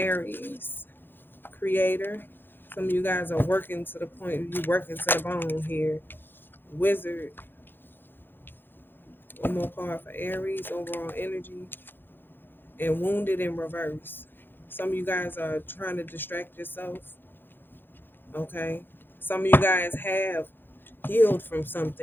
creator. Some of you guys are working to the point, you working to the bone here. Wizard. One more card for Aries, overall energy. And wounded in reverse. Some of you guys are trying to distract yourself. Okay. Some of you guys have healed from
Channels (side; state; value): right; late; 0.099 ms